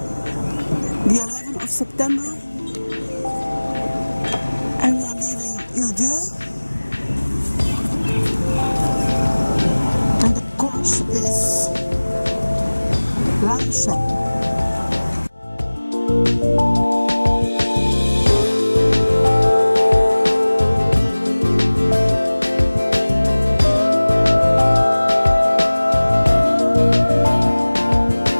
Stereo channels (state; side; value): inverted; both; correlation -1.00